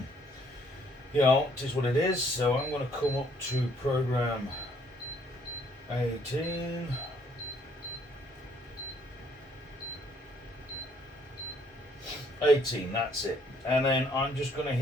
you know, it is what it is. So I'm going to come up to program 18. That's it. And then I'm just going to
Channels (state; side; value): normal; both; correlation 0.65